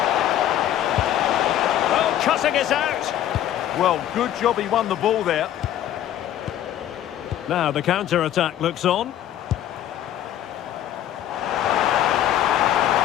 Oh, cutting it out. Well, good job he won the ball there. Now the counter-attack looks on.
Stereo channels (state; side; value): quieter; right; 11.7 dB